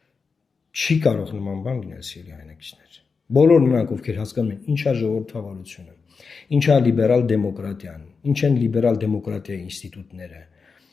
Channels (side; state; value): right; quieter; 5.0 dB